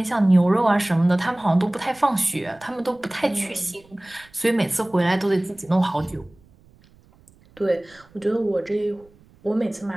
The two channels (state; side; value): noise; right; rumble, 29 dB below the sound